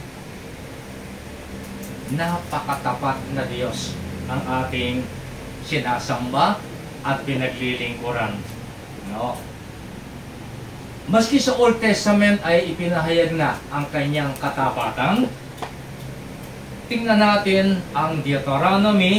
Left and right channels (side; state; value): both; identical; correlation 1.00